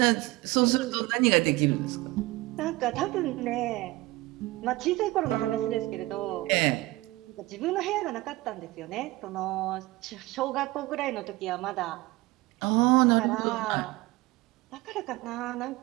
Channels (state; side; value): quieter; left; 20.1 dB